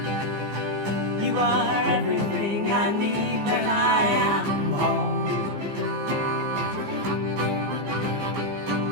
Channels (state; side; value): late; left; 15 ms